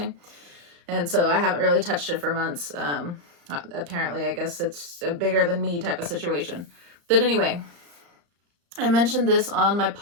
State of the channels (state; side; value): late; left; 35 ms